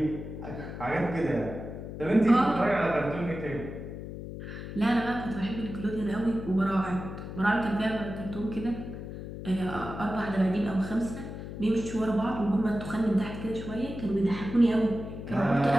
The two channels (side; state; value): left; noise; hum, 9 dB below the sound